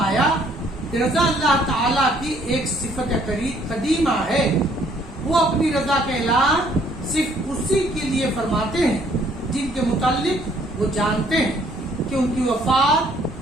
کہ رضا اللہ تعالیٰ کی ایک صفت قدیمہ ہے، وہ اپنی رضا کا اعلان صرف اسی کے لیے فرماتے ہیں جن کے متعلق وہ جانتے ہیں، کہ ان کی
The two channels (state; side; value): normal; both; correlation 0.63